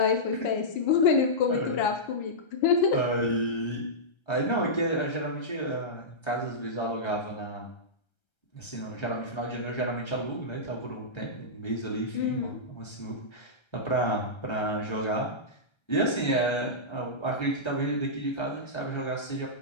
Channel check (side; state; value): right; late; 1.3 ms